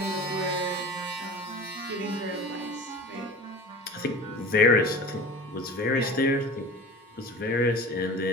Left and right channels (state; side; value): normal; both; correlation 0.37